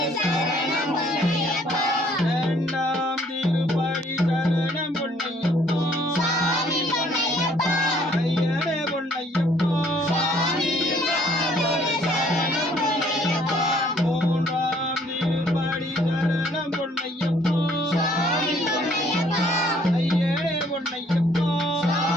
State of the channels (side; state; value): both; normal; correlation 0.62